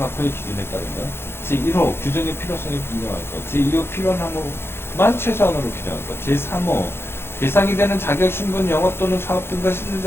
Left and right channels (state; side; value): late; right; 0.11 ms